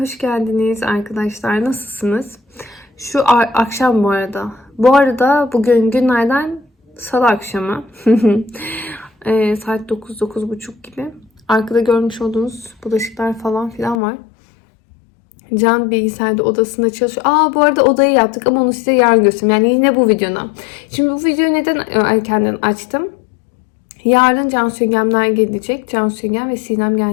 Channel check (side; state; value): right; drops out; at 14.0 s